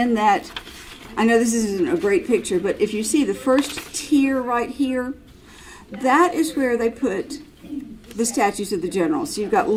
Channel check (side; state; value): both; identical; correlation 1.00